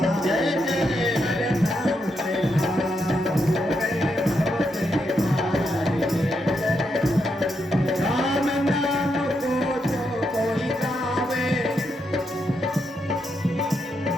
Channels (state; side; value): normal; both; correlation 0.81